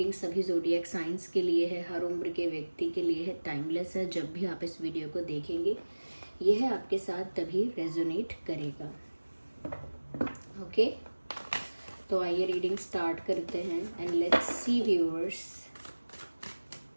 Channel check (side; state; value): both; inverted; correlation -1.00